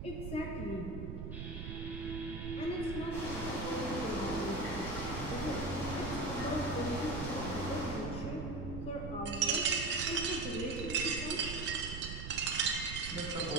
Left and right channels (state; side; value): noise; right; rumble, 6 dB below the sound